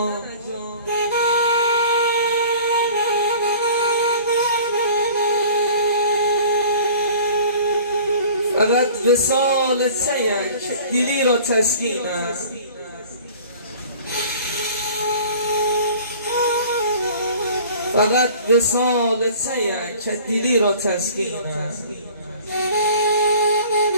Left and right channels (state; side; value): inverted; both; correlation -0.46